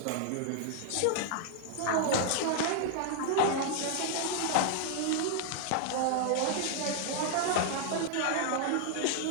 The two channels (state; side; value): different; both; correlation 0.00